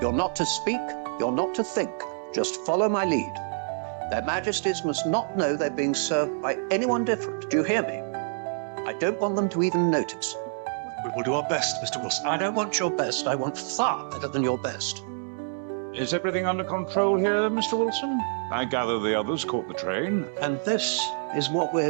You're not to speak, you're not to think. Just follow my lead. Their Majesties must not know they're being served by anyone different. Do you hear me? I don't want them to even notice. We will do our best, Mr. Wilson. I don't want your best. I want far better than your best. Is everything under control here, Mr. Wilson? I gather the others caught the train. And this is what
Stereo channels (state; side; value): silent; left; 60 dB below the other